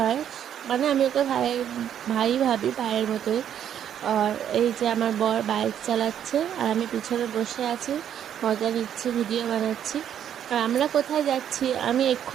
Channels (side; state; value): left; quieter; 9.7 dB